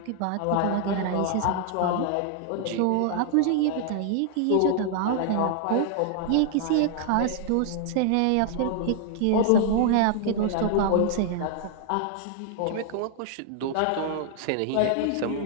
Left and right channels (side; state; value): both; different; correlation 0.00